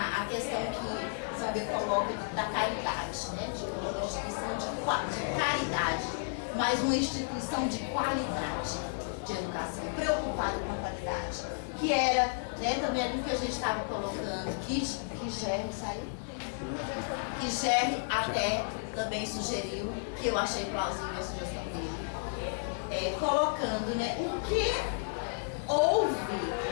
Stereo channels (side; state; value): right; silent; digital silence